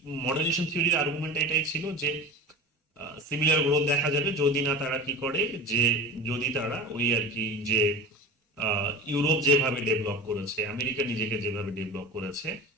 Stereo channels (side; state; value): both; normal; correlation 0.32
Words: মডার্নাইজেশন থিওরির আর্গুমেন্ট এটাই ছিল যে সিমিলার গ্রোথ দেখা যাবে যদি না তারা কি করে, যে যদি তারা ওই আর কি যে ইউরোপ যেভাবে ডেভেলপ করেছে, আমেরিকা নিজেকে যেভাবে ডেভেলপ করেছে,